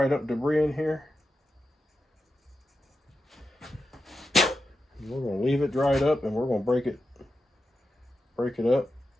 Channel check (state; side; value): normal; both; correlation 0.90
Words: up debris in here. We're going to leave it dried up, and we're going to break it up.